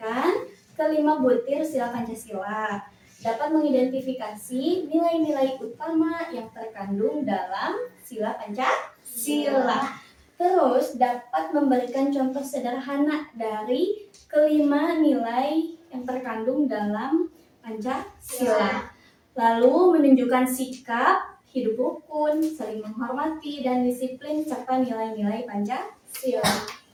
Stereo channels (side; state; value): both; identical; correlation 1.00